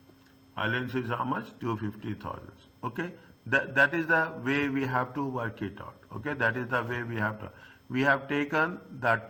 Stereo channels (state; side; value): identical; both; correlation 1.00